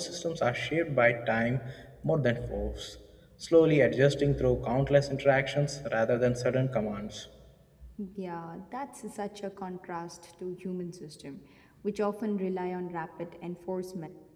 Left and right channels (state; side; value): identical; both; correlation 1.00